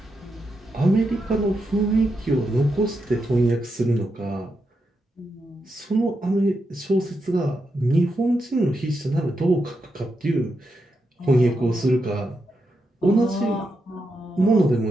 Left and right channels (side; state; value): both; normal; correlation 0.85